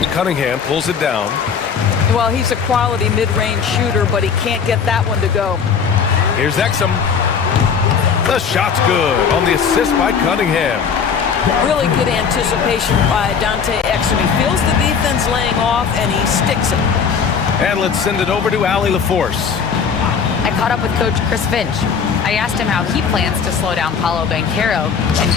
Cunningham pulls it down. Well, he's a quality mid-range shooter, but he can't get that one to go. Here's Exum. The shot's good on the assist by Cunningham. Really good anticipation by Dante Exum. He feels the defense laying off, and he sticks it. And let's send it over to Allie LaForce. I caught up with Coach Chris Finch. I asked him how he plans to slow down Paolo Banchero, and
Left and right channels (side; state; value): right; quieter; 6.5 dB